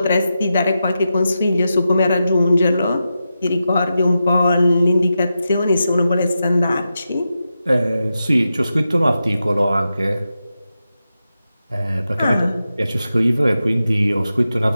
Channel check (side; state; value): both; inverted; correlation -0.90